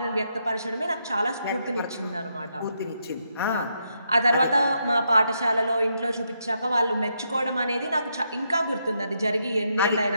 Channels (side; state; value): both; inverted; correlation -0.79